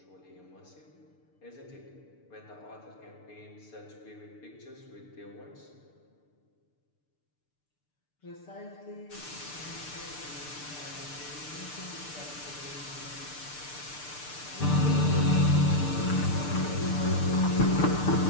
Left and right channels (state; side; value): late; right; 6.7 ms